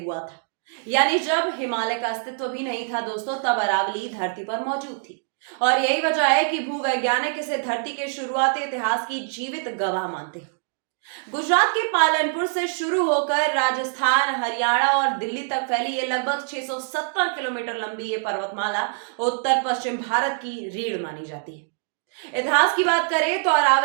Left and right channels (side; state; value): left; silent; digital silence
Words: हुआ था। यानी जब हिमालय का अस्तित्व भी नहीं था दोस्तों, तब अरावली धरती पर मौजूद थी। और यही वजह है कि भूवैज्ञानिक इसे धरती के शुरुआती इतिहास की जीवित गवाह मानते हैं। गुजरात के पालनपुर से शुरू होकर राजस्थान, हरियाणा और दिल्ली तक फैली ये लगभग 670 किलोमीटर लंबी ये पर्वतमाला उत्तर पश्चिम भारत की रीढ़ मानी जाती है। इतिहास की बात करें तो